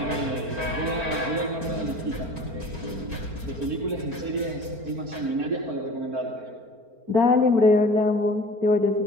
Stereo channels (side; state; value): left; late; 4.4 ms